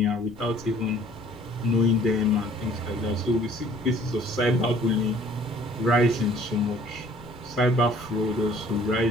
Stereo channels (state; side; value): noise; left; rumble, 20 dB below the sound